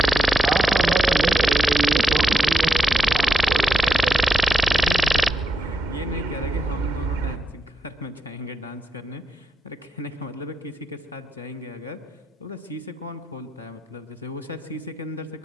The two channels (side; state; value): both; normal; correlation 0.85